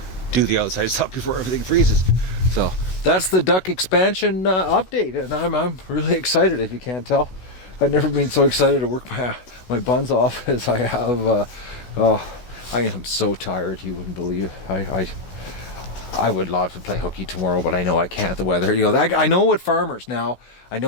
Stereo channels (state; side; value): late; right; 16 ms